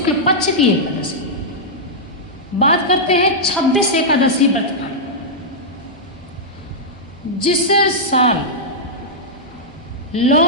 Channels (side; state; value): both; normal; correlation -0.09